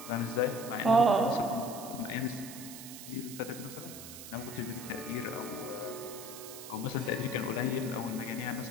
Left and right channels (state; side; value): noise; right; hiss, 12 dB below the sound